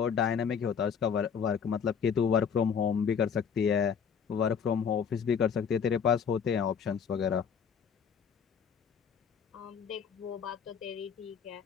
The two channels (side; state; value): right; quieter; 7.0 dB